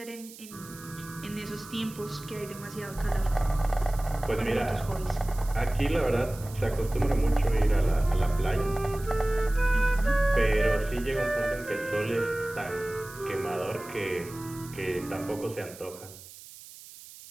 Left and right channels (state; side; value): noise; right; hiss, 17 dB below the sound